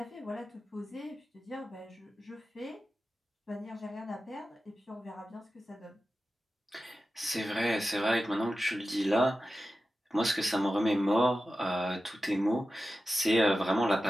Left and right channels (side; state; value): both; normal; correlation 0.93